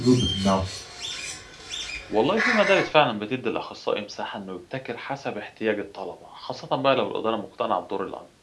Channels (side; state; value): both; identical; correlation 1.00